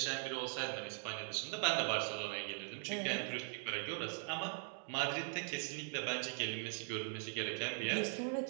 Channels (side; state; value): left; silent; 50 dB below the other